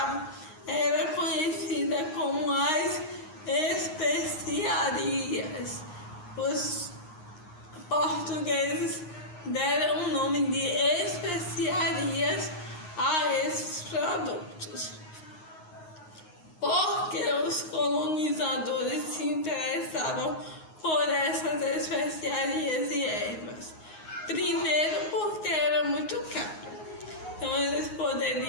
era conhecida como as especiarias. Os portugueses deram o nome de especiarias a esses produtos, porque os colonizadores se interessavam por essas especiarias e ervas. Primeiro, porque era muito caro. Então, eles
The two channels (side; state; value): right; late; 9.5 ms